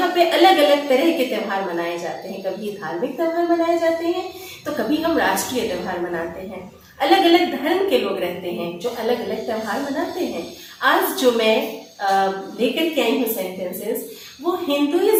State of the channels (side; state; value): both; identical; correlation 1.00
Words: पे अलग अलग तरह के त्यौहार मनाए जाते हैं। कभी धार्मिक त्यौहार मनाए जाते हैं तो कभी हम राष्ट्रीय त्यौहार मनाते हैं। अलग अलग धर्म के लोग रहते हैं जो अलग अलग त्यौहार मनाते हैं। आज जो मैं लेकर के आई हूँ सेंटेंसेस वो